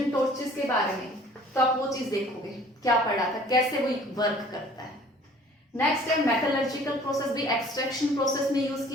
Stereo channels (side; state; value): both; normal; correlation 0.52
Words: टॉर्चेस के बारे में, तो आप वो चीज देखोगे क्या पढ़ा था, कैसे वो वर्क करता है। नेक्स्ट है मेटलर्जिकल प्रोसेस, भी एक्सट्रैक्शन प्रोसेस में यूज